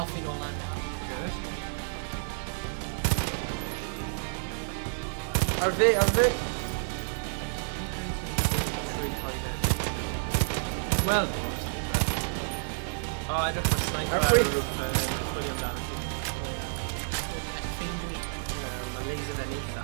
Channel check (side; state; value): left; silent; digital silence